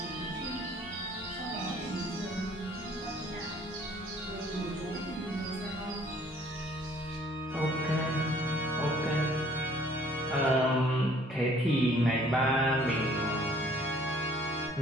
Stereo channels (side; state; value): both; normal; correlation 0.58